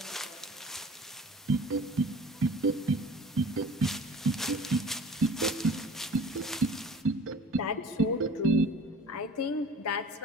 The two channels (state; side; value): normal; both; correlation 0.44